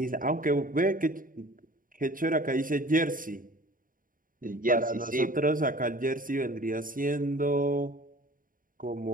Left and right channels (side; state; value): left; late; 0.40 ms